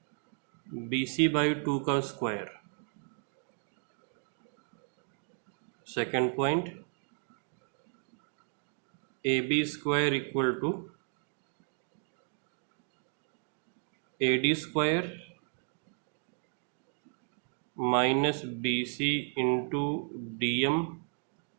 BC by 2 का square. Second point AB square equal to AD square minus BC into DM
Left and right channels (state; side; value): silent; left; 55 dB below the other